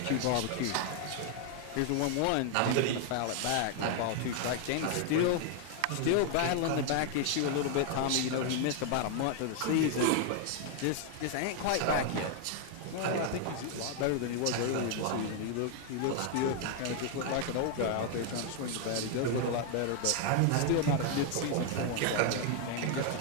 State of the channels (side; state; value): both; different; correlation 0.00